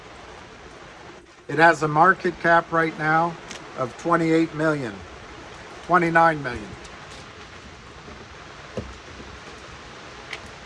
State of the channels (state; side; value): identical; both; correlation 1.00